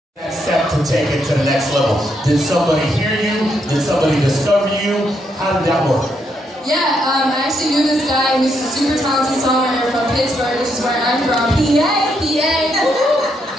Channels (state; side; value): normal; both; correlation 0.77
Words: That step to take it to the next level. Did somebody hear you? Did somebody discover you? How did that work? Yeah, I actually knew this guy who's a super talented songwriter from Pittsburgh, which is where I'm from. PA.